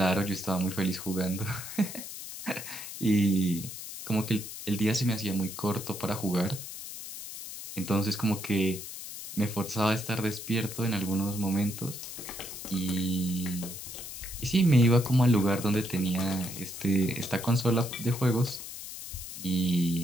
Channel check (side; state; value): left; noise; hiss, 10 dB below the sound